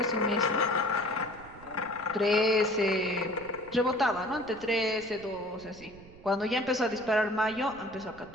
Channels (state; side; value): noise; right; rumble, 21 dB below the sound